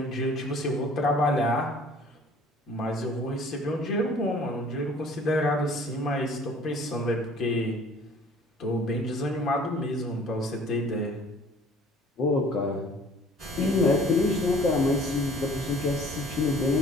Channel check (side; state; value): both; normal; correlation 0.52